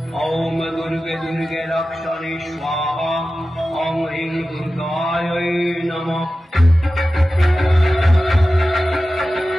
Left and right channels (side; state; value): both; normal; correlation 0.94